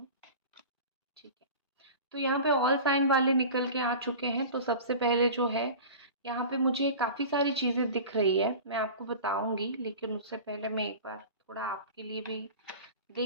ठीक है, तो यहाँ पे ऑल साइन वाले निकल के आ चुके हैं। तो सबसे पहले जो है, यहाँ पे मुझे काफ़ी सारी चीज़ें दिख रही है, मैं आपको बताऊंगी, लेकिन उससे पहले मैं एक बार थोड़ा आपके लिए भी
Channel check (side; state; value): both; inverted; correlation -0.35